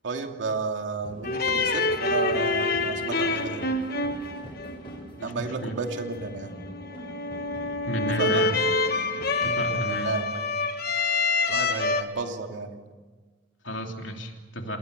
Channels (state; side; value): normal; both; correlation -0.01